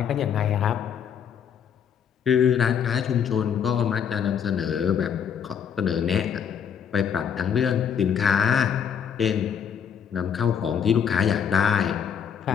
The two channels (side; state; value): right; quieter; 7.9 dB